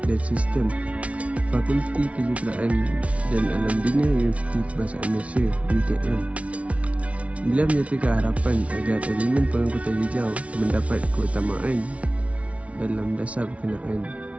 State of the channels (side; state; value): left; late; 0.064 ms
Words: dan Sistem, Fakulti Kejuruteraan dan Alam Bina Universiti Kebangsaan Malaysia (UKM). Beliau menyatakan harapan agar elemen pengangkutan hijau mendapat keutamaan dalam dasar berkenaan.